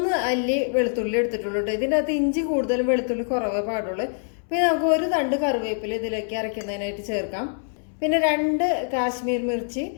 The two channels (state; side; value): silent; right; 62 dB below the other